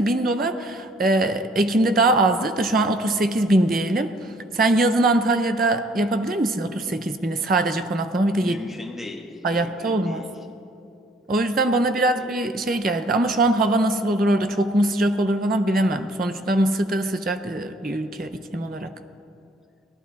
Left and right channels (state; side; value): normal; both; correlation 0.60